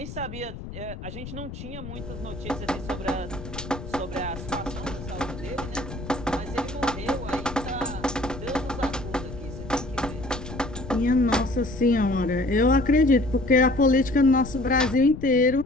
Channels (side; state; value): left; noise; rumble, 11 dB below the sound